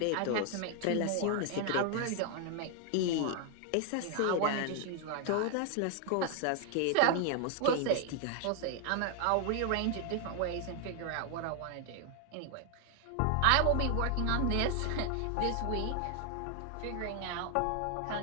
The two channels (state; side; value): different; both; correlation 0.00